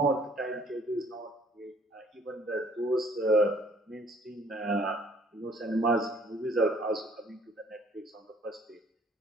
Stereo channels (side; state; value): both; normal; correlation 0.58